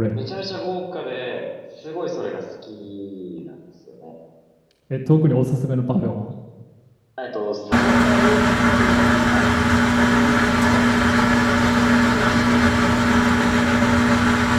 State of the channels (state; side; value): identical; both; correlation 1.00